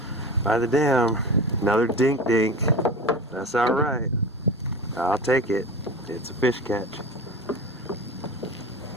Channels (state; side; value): normal; both; correlation 0.31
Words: dam. Another dink. That's all right. I'll take it. It's a fish catch.